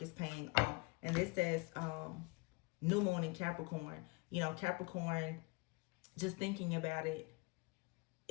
paying off. And this says new moon in Capricorn. Capricorn, just thinking about it,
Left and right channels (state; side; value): quieter; right; 27.9 dB